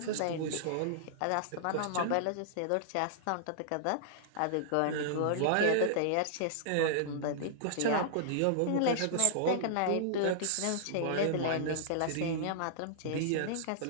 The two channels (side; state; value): both; different; correlation -0.01